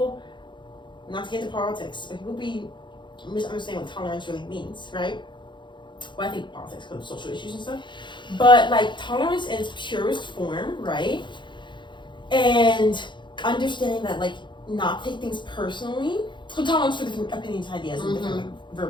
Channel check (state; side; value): late; right; 0.23 ms